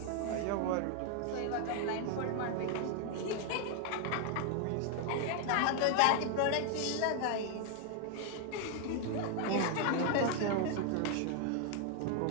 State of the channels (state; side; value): different; both; correlation 0.00